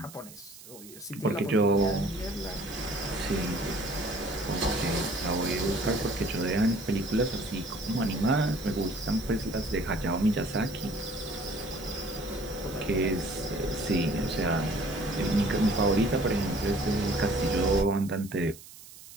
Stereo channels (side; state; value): right; noise; hiss, 18 dB below the sound